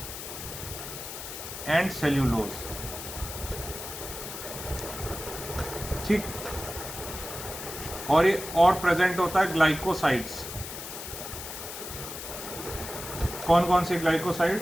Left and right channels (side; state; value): left; noise; hiss, 9 dB below the sound